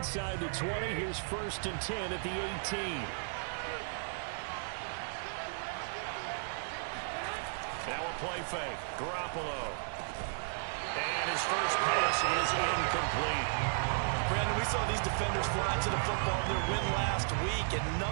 the 20, here's 1st and 10 at the 18. Now a play fake. Garoppolo. And his first pass is incomplete. Brandon, we saw these defenders fly to the football in their win last week, and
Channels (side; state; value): left; silent; 55 dB below the other